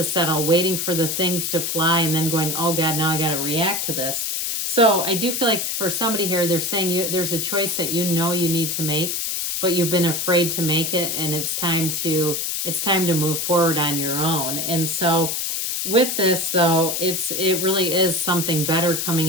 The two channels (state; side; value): noise; left; hiss, 1 dB below the sound